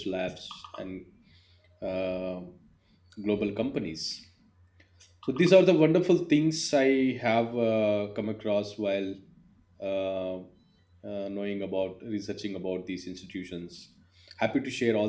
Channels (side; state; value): both; identical; correlation 1.00